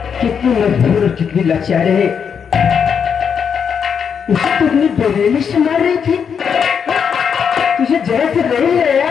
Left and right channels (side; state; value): right; quieter; 7.0 dB